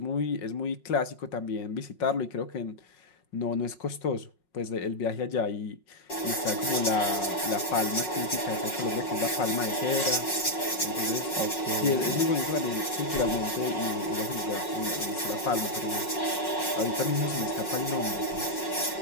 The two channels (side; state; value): right; late; 5.5 ms